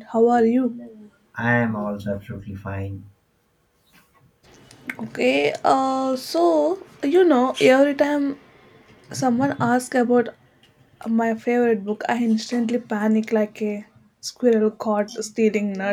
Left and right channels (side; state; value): both; identical; correlation 1.00